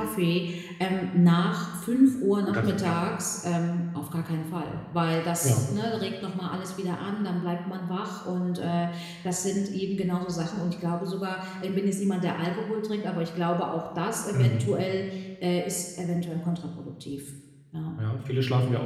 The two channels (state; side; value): identical; both; correlation 1.00